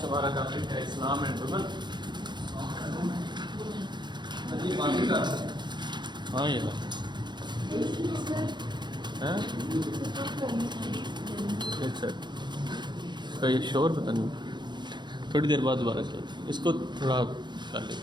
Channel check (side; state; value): left; late; 0.22 ms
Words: ہمارا ٹاپک ہے اسلام اینڈ وومن. ہاں یہ ایک سیکنڈ اس کا یہ شور پتہ نہیں, تھوڑی دیر بعد دوبارہ چلتے, اس کو تھوڑا کر